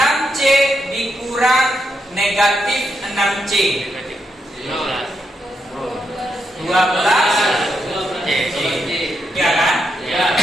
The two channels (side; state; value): both; normal; correlation 0.82